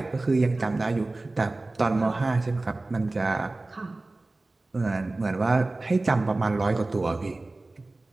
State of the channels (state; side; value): quieter; left; 3.1 dB